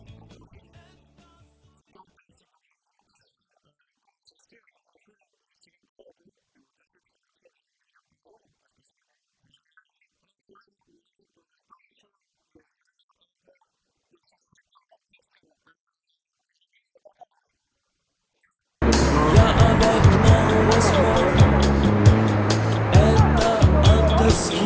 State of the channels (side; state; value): both; identical; correlation 1.00